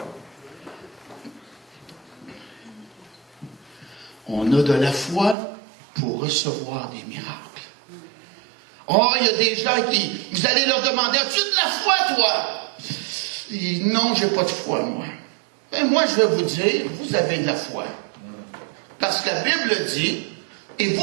On a de la foi pour recevoir des miracles. Oh, il y a des gens qui, vous allez leur demander, as-tu de la foi, toi? Et non, j'ai pas de foi, moi. Ben, moi, je vais vous dire, vous avez de la foi. Parce que la Bible dit, et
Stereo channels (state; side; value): drops out; left; at 5.4 s